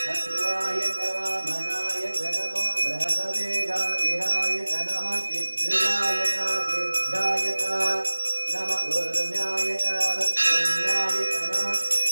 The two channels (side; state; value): both; inverted; correlation -1.00